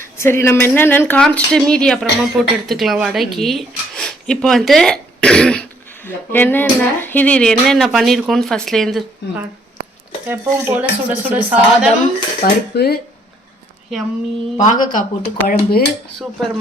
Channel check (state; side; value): normal; both; correlation 0.66